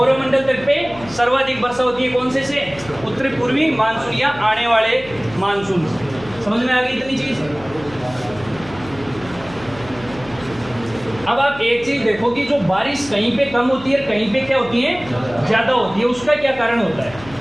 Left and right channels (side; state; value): left; noise; hum, 18 dB below the sound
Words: तट पे सर्वाधिक वर्षा होती है। कौन से उत्तरी पूर्वी मानसून या आने वाले मानसून। समझ में आ गई इतनी चीज। अब आप एक चीज देखो कि जो बारिश कहीं पे कम होती है, कहीं पे क्या होती है, ज्यादा होती है। उसका क्या कारण होता है,